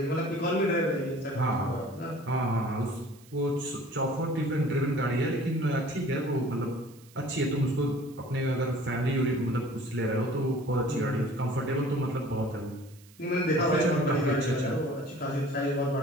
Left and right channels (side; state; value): right; noise; hiss, 26 dB below the sound